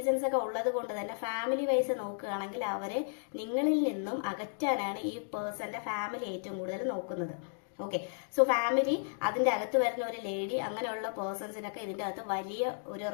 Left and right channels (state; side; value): silent; right; digital silence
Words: ഒക്കെ ഉള്ളത് കൊണ്ട് തന്നെ ഫാമിലി വൈസ് നോക്കുകയാണെങ്കിൽ അവരെ നിങ്ങളിൽ നിന്നും അകറ്റാനാണ് ഈ പേഴ്സന്റെ ഫാമിലി ഏറ്റവും കൂടുതൽ നോക്കുന്നത്. ഓക്കെ, സോ ഫാമിലി, അതിന്റെ അകത്ത് വരുന്ന ഒരു ലേഡി, അങ്ങനെയുള്ള പേഴ്സൺസിനൊക്കെ ഇതിന്റെ അകത്ത് വലിയ ഒരു